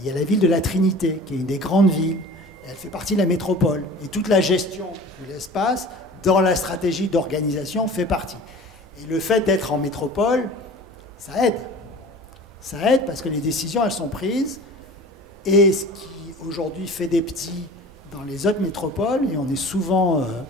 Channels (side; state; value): both; normal; correlation 0.41